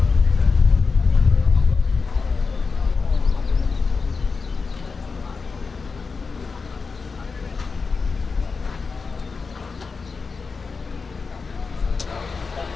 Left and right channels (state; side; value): quieter; right; 4.7 dB